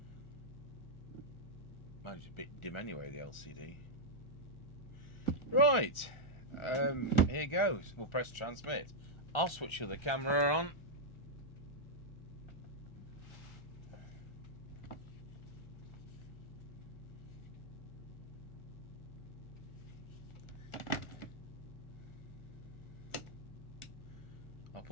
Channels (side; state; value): right; late; 1.4 ms